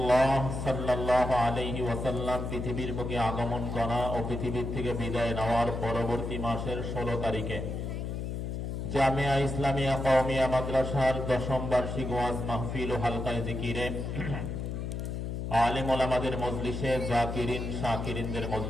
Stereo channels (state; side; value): noise; left; hum, 4 dB below the sound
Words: সাল্লাল্লাহু আলাইহি ওয়াসাল্লাম পৃথিবীর বুকে আগমন করা ও পৃথিবীর থেকে বিদায় নেওয়ার পরবর্তী মাসের 16 তারিখে জামিয়া ইসলামিয়া কওমিয়া মাদ্রাসার 10ম বার্ষিক ওয়াজ মাহফিল ও হালকায়ে জিকিরে আলেম ওলামাদের মজলিসে, জাকিরিন শাকিরিনদের